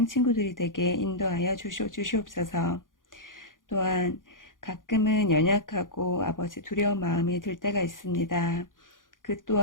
친구들이 되게 인도하여 주시옵소서. 또한 가끔은 연약하고 아버지 두려운 마음이 들 때가 있습니다. 그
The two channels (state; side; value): late; right; 0.89 ms